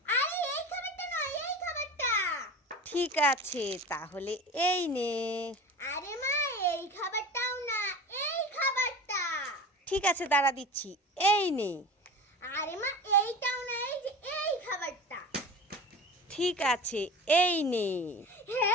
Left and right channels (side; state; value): both; normal; correlation 0.35